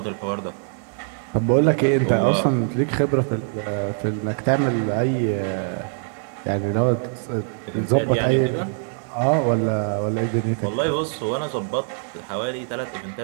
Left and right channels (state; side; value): silent; left; 62 dB below the other